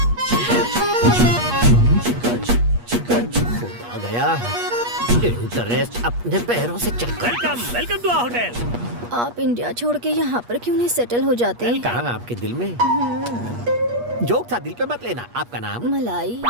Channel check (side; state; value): left; late; 8.4 ms